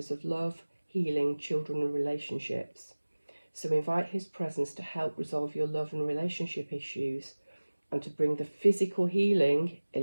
of love, healing, children and relationships. So invite his presence to help resolve your love and relationship issues and to bring the physical healing,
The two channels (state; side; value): inverted; both; correlation -1.00